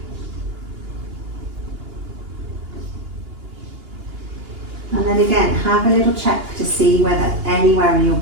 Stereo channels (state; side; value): late; left; 2.8 ms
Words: And then again, have a little check to see whether anywhere in your